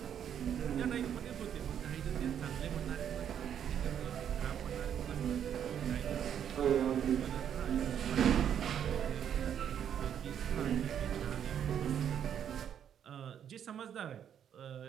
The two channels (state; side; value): quieter; left; 9.1 dB